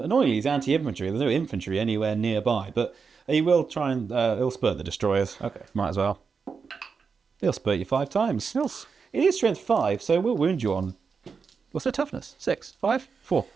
he's anti-infantry. There's no infantry anywhere nearby, but he will try and he'll spurt the destroyers. Okay. Might as well. He'll spurt you 5 times. It is strength 5, so we'll wound you on. What's their toughness? 6, 5, 4,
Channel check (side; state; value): left; quieter; 5.5 dB